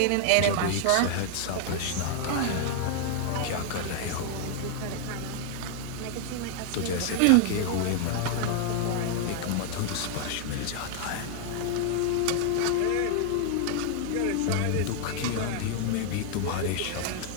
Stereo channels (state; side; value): different; both; correlation 0.00